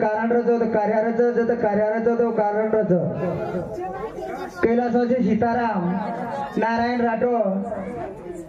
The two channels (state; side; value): identical; both; correlation 1.00